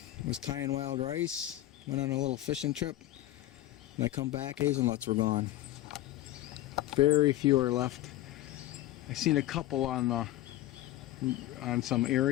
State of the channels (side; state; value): right; quieter; 14.8 dB